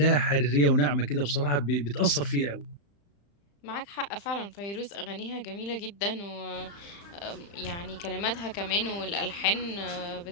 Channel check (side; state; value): right; late; 35 ms